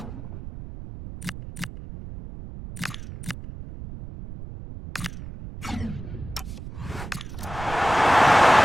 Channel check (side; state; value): right; noise; rumble, 11 dB below the sound